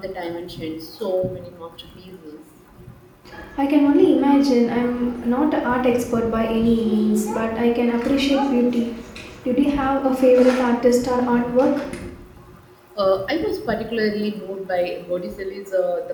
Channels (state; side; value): identical; both; correlation 1.00